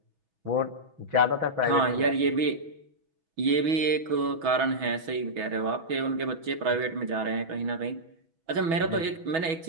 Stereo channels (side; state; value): left; late; 6.1 ms